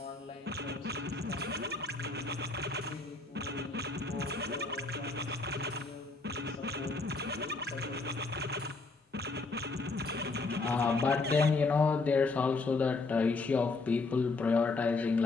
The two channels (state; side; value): quieter; right; 3.7 dB